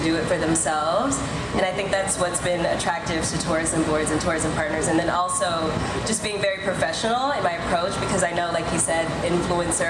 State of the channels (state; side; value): identical; both; correlation 1.00